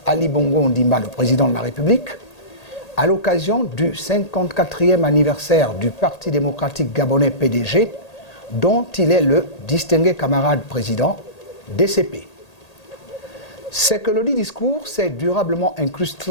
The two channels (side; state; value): right; late; 1.8 ms